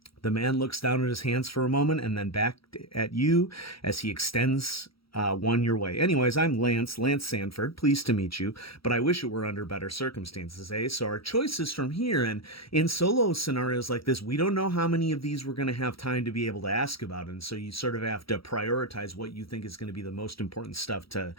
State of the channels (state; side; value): late; right; 0.75 ms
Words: The man looks down at his hands for a moment and then back at you as he extends one your way. Anyways, I'm Lance Sanford. Pleased to meet you, but I wish it were under better circumstances, eh? So our choices from here, and in solo scenarios like this, we don't know how many of these we're going to have time to be able to ask about, and so you sort of have to prioritize what you think is going to be the most important stuff to